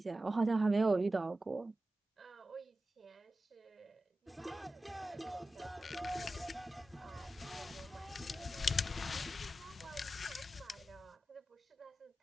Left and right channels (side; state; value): both; normal; correlation 0.93